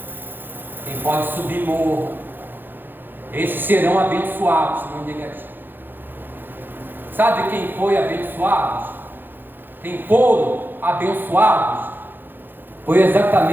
Quem pode subir morro. Esses serão abençoados, não negativo. Sabe quem foi abençoados? Quem foram abençoados? Foi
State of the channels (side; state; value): left; late; 0.095 ms